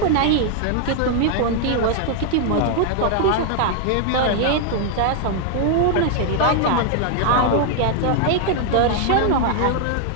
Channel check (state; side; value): different; both; correlation 0.00